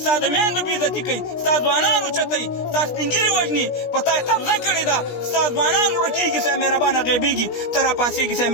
ستا د میندو بېعزتي کوي ستا ځوانان اوچتوي ستا سپین ږیري وژني په تا یې قبضه کړې ده ستا ځوانان ورکېږي سه مهربانه غیبېږي ته راپاڅېږي سه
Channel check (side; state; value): right; late; 17 ms